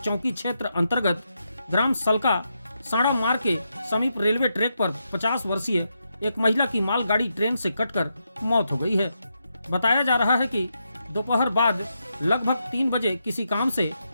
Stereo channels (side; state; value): both; inverted; correlation -0.84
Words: क्षेत्र अंतर्गत ग्राम सलका साड़ा मार्ग के समीप रेलवे ट्रैक पर 50 वर्षीय एक महिला की मालगाड़ी ट्रेन से कटकर मौत हो गई है। बताया जा रहा है कि दोपहर बाद लगभग 3 बजे किसी काम से